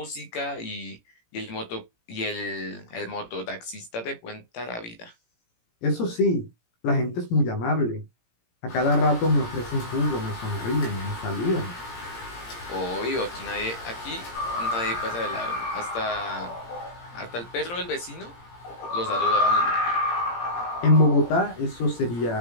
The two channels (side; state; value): right; late; 17 ms